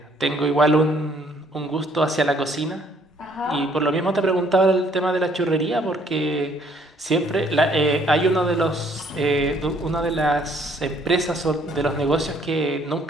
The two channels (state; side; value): normal; both; correlation 0.64